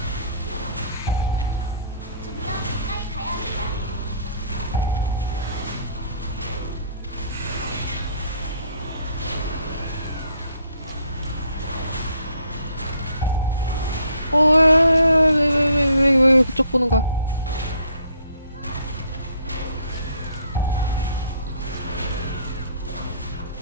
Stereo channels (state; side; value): inverted; both; correlation -0.63